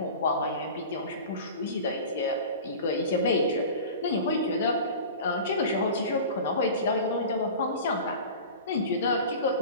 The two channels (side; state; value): both; inverted; correlation -0.36